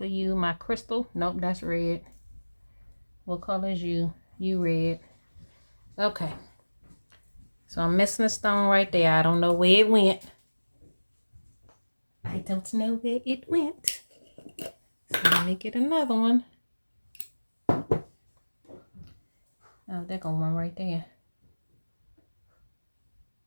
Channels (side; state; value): both; inverted; correlation -1.00